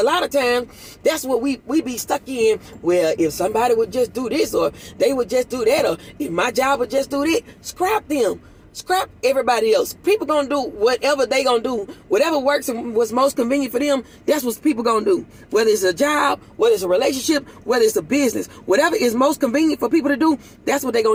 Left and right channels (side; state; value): both; identical; correlation 1.00